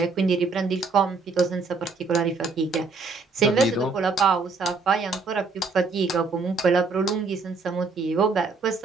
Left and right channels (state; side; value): quieter; left; 4.2 dB